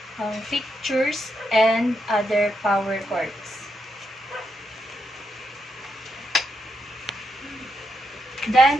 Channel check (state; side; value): normal; both; correlation 0.82